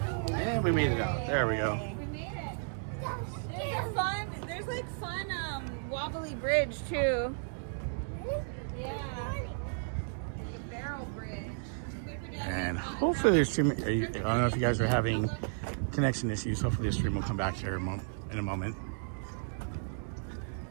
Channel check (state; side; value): silent; left; digital silence